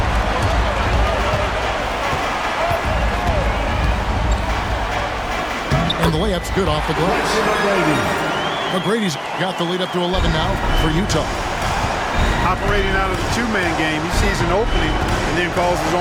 And the layup's good off the glass. McGrady's got the lead up to 11 now for Utah. Operating out of the two-man game, he sees an opening and then calls his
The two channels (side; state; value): both; identical; correlation 1.00